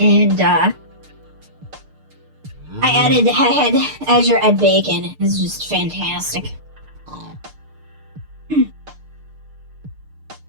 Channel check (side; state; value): left; late; 6.6 ms